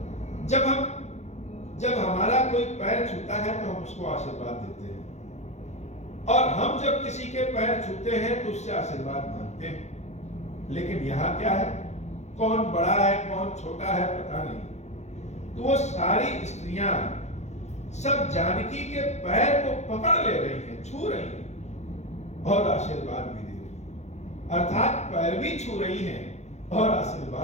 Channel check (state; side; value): late; right; 0.33 ms